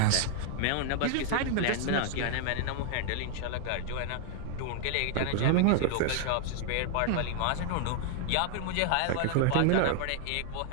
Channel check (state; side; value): different; both; correlation 0.00